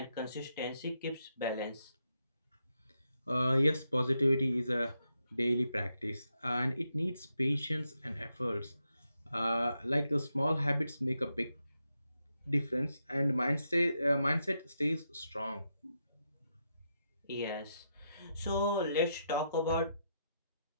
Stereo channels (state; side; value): inverted; both; correlation -0.82